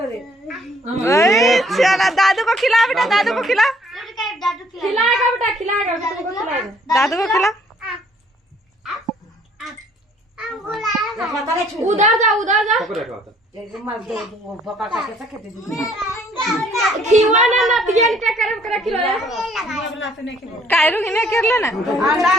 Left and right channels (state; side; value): normal; both; correlation 0.61